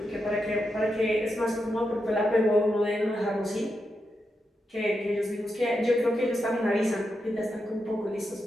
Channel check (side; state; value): both; normal; correlation 0.86